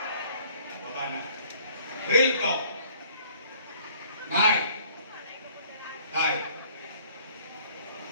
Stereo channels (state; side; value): inverted; both; correlation -0.57